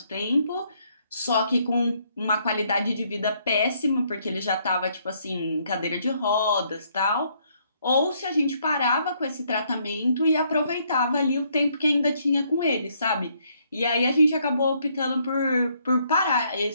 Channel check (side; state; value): both; inverted; correlation -0.70